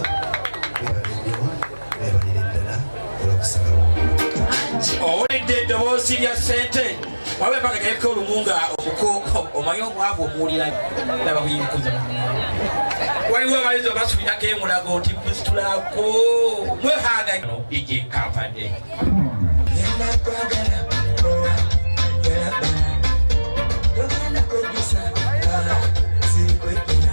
webale nnyo webalire ddala olw'okusalawo owulidde eddoboozi lya ssente wabe mpaka gayeko olumunga omuko omanyi omwavu omuwulira naba buyinkuza waliwo abayizi obasubirako emulago nti musitulako mwehanga ije kampadde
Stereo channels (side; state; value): both; inverted; correlation -1.00